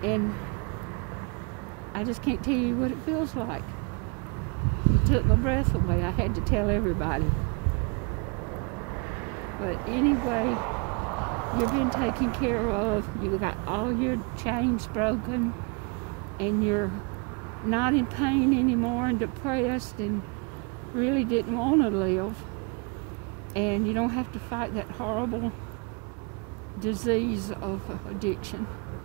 And I just can't tell you what it feels like. It took my breath away. I had to tell everybody. But anyway, you've been taken care of. You got all your chains broken, and you're not in pain anymore and depressed and really didn't want to live. And you don't have to fight that horrible disease of addiction.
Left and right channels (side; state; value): left; quieter; 33.1 dB